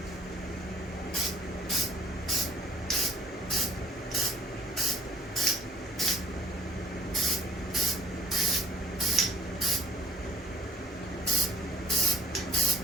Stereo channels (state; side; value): normal; both; correlation 0.54